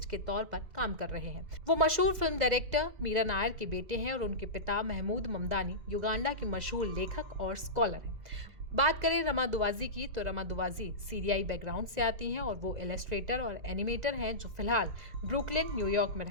के तौर पर काम कर रहे हैं। वो मशहूर फिल्म डायरेक्टर मीरा नायर के बेटे हैं और उनके पिता महमूद ममदानी युगांडा के मशहूर लेखक और स्कॉलर हैं। बात करें रमा दुवाजी की, तो रमा दुवाजी सीरियाई बैकग्राउंड से आती हैं और वो इलस्ट्रेटर और एनिमेटर हैं, जो फिलहाल ब्रुकलिन न्यूयॉर्क में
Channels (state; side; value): late; left; 2.0 ms